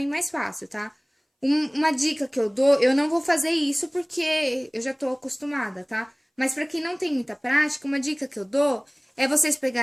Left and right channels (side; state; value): both; identical; correlation 1.00